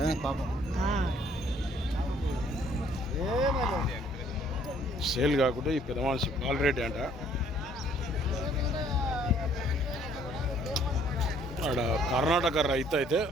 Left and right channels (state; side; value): normal; both; correlation 0.61